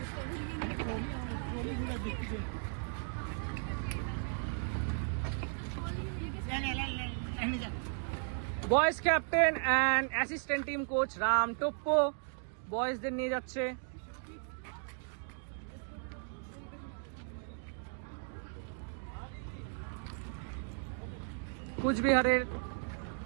boys captain and assistant team coach Ram Toppo বয়েজদের নিয়ে যাচ্ছে। কুচবিহারের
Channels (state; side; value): silent; left; 54 dB below the other